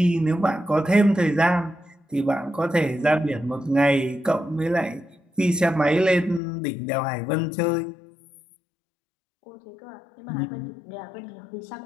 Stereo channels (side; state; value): right; drops out; at 6.4 s